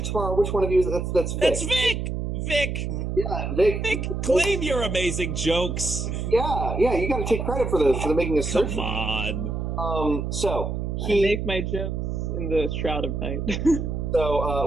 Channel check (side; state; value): right; noise; hum, 3 dB below the sound